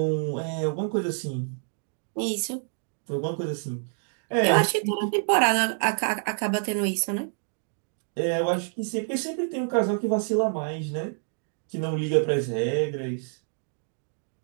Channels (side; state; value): left; silent; digital silence